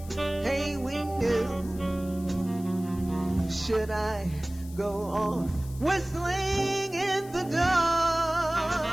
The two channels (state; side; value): noise; left; hiss, 20 dB below the sound